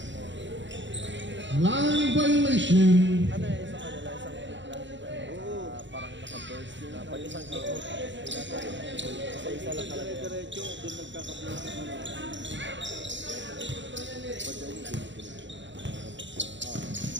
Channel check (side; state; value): left; late; 0.54 ms